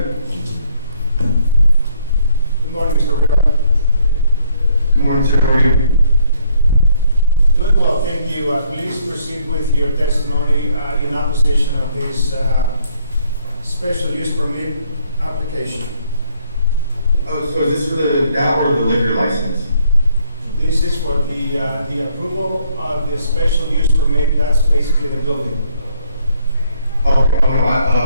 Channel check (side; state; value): both; inverted; correlation -0.68